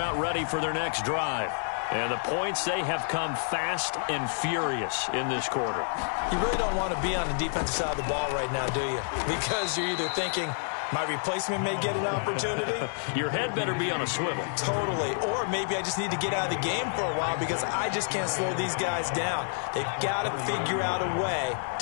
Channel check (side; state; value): right; silent; 59 dB below the other